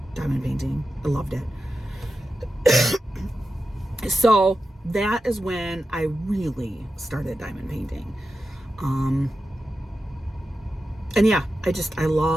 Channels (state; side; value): normal; both; correlation 0.91